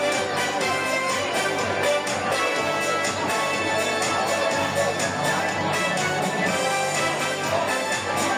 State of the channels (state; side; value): identical; both; correlation 1.00